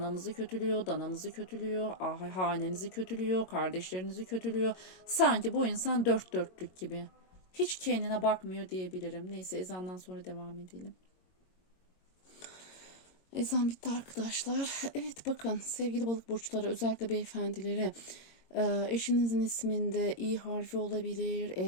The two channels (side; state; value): right; late; 22 ms